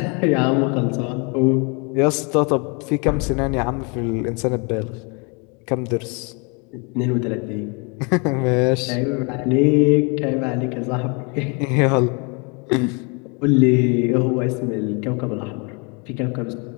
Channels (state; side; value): quieter; right; 33.2 dB